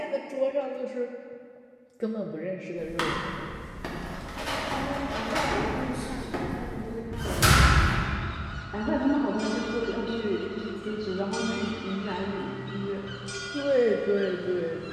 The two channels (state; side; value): identical; both; correlation 1.00